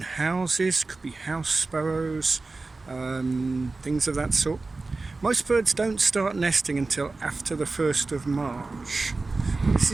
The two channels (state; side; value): quieter; left; 3.6 dB